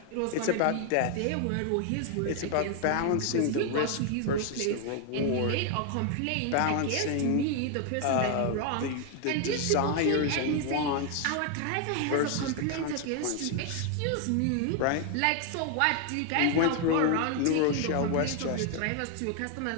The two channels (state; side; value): different; both; correlation 0.00